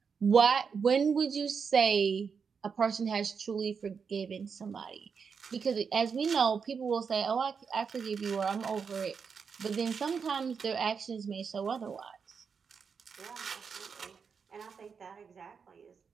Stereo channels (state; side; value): quieter; left; 6.0 dB